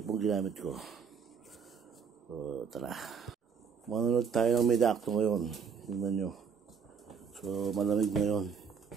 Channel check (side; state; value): left; quieter; 6.4 dB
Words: ginamit ko. Tara, manonood tayo ng midakto ngayon. Tingnan nyo. So malamig ngayon.